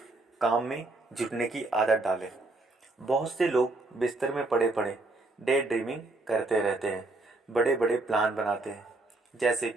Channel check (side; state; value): left; quieter; 3.0 dB